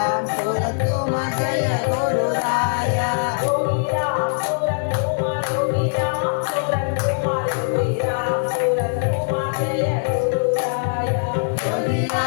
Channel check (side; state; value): right; silent; digital silence